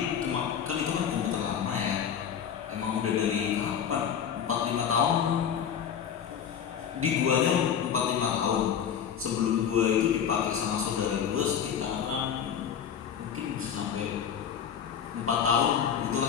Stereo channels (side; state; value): right; quieter; 8.3 dB